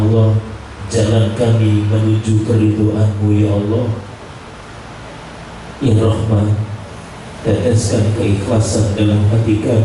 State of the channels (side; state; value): both; identical; correlation 1.00